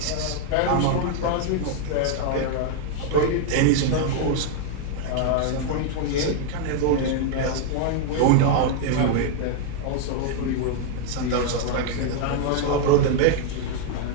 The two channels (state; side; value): different; both; correlation 0.00